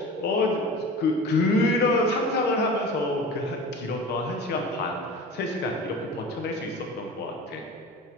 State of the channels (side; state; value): both; normal; correlation 0.35